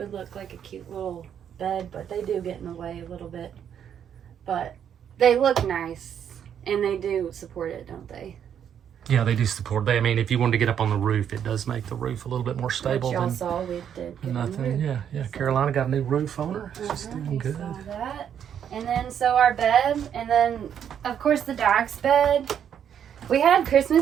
look like a cute little bed, but they do get in the way a little bit. But they look nice, and they do support it, don't they? Yeah, they do support. I mean, if you wanted to get up on the roof, it does make the roof a little bit more stable. Which y'all than saw we did get on the nothing. roof. Yeah. Carolina got a new roof on her. She's doing We good. saw that. And then, so our bed, and then, of course, the dog's bed. We had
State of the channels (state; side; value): quieter; left; 8.8 dB